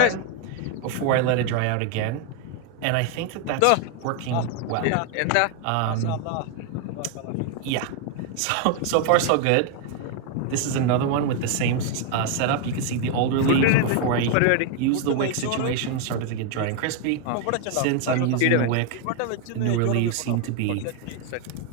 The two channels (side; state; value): both; different; correlation 0.01